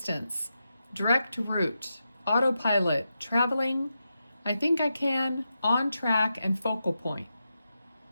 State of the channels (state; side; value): inverted; both; correlation -0.88